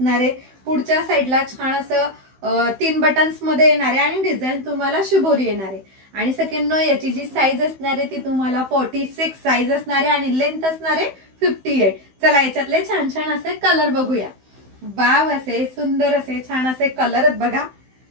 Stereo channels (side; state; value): left; late; 16 ms